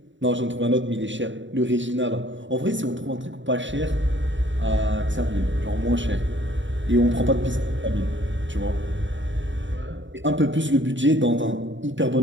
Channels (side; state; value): left; late; 0.55 ms